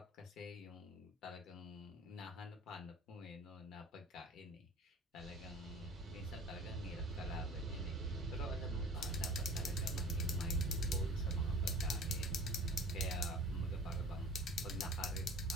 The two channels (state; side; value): normal; both; correlation 0.43